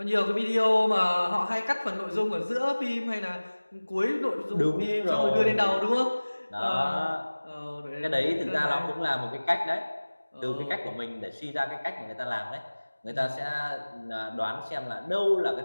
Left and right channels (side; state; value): both; inverted; correlation -1.00